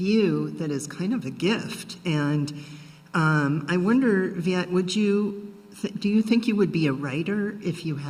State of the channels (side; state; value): both; identical; correlation 1.00